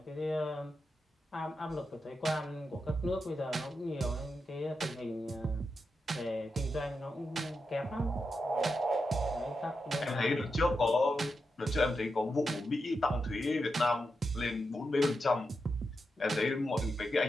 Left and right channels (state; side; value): normal; both; correlation 0.87